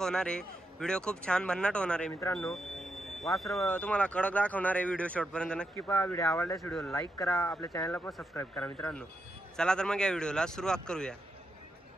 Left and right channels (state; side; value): normal; both; correlation 0.84